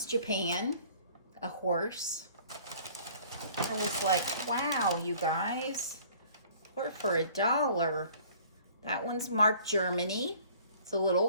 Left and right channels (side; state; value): both; inverted; correlation -0.52